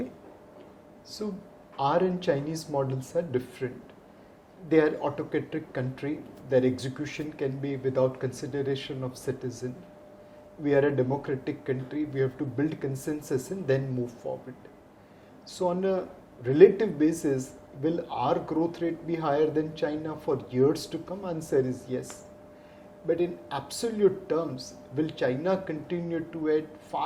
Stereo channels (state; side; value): identical; both; correlation 1.00